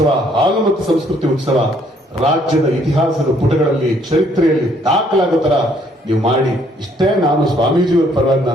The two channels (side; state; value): both; normal; correlation 0.65